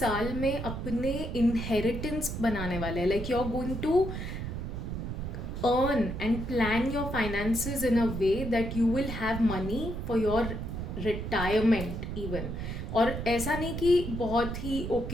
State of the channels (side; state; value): right; noise; rumble, 5 dB below the sound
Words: में अपने inheritance बनाने वाले हैं. Like you're going to earn and plan your finances in a way that you will have money for your retirement even. और ऐसा नहीं कि बहुत ही